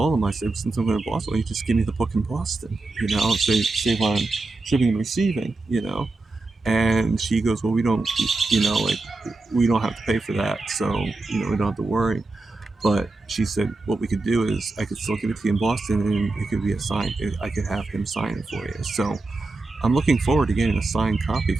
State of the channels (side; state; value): left; quieter; 3.3 dB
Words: him, I said, since I'm going to Boston, you just give me the book in Boston, save on shipping and receiving, And she goes, well, we don't, like, we don't have to pay for that, so we don't have to worry. But she said, what we could do is I could still give it to you in Boston, and it could be a sign. I could have him sign it for you. So I'm looking forward to getting a signed copy